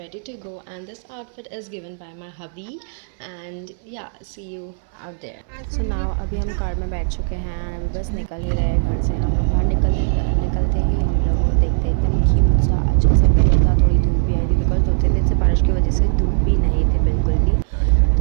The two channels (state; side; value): silent; left; 66 dB below the other